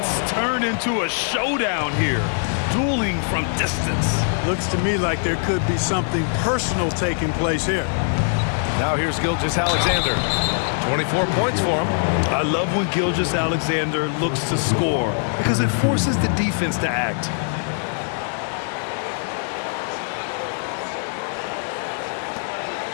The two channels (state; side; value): silent; right; digital silence